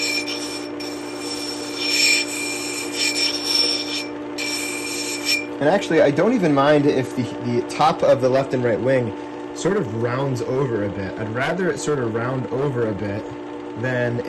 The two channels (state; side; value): identical; both; correlation 1.00